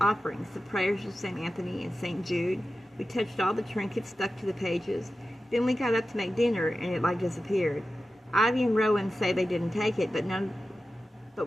the prayers of St. Anthony and St. Jude. We touched all the trinkets stuck to the pages. Then we got up to make dinner, and it disappeared. Ivy and Rowan say they didn't take it, but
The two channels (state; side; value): normal; both; correlation 0.93